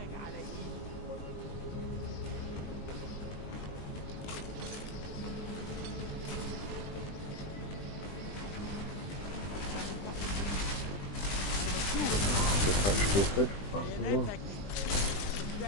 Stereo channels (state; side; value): late; right; 20 ms